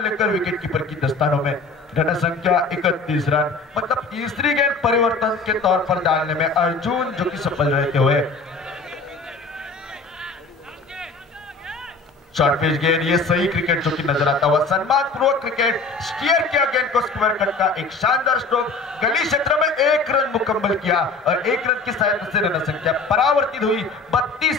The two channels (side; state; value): right; quieter; 3.8 dB